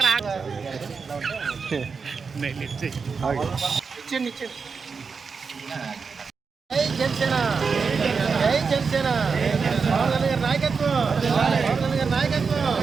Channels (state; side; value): quieter; left; 5.2 dB